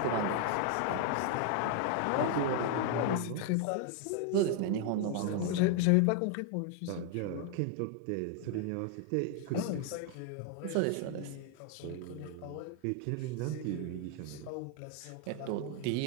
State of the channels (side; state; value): both; different; correlation 0.00